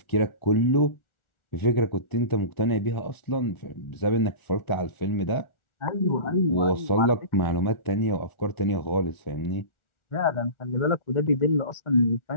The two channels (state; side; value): late; right; 1.4 ms